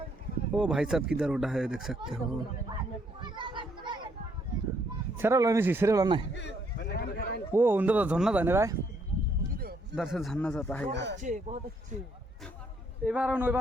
ओ भाई साहब किधर उड़ा है देख सकते हो। सेरेला नहीं वो उधर तो झरना था भाई। उधर से झरना जाता है यार। बहुत अच्छे এবার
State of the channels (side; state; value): both; normal; correlation 0.70